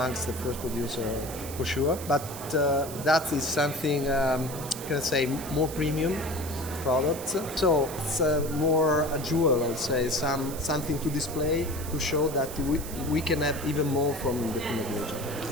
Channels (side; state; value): right; noise; hiss, 11 dB below the sound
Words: the first producer for sure. But that is something, can I say, more premium products. So it's more a jewel, I would say, something to display to show that we can have even more from the Pinot Grigio.